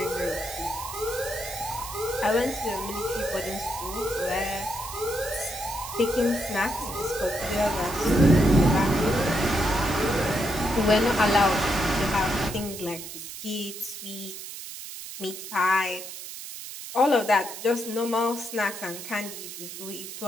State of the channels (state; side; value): noise; right; hiss, 10 dB below the sound